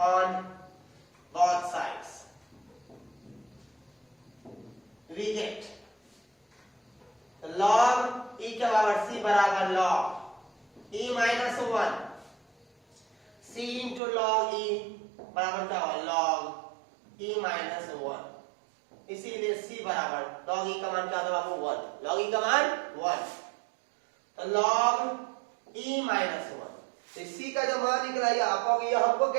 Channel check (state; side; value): drops out; left; at 14.0 s